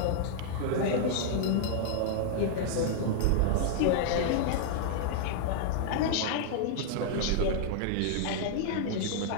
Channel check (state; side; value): different; both; correlation -0.01